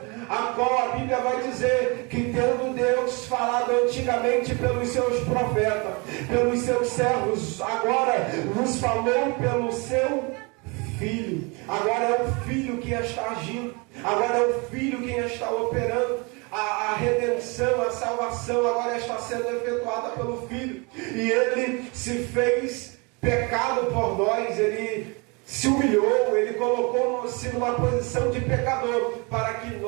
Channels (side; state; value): left; quieter; 29.7 dB